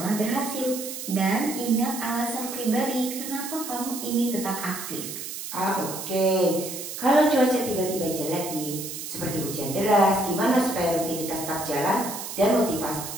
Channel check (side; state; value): right; noise; hiss, 8 dB below the sound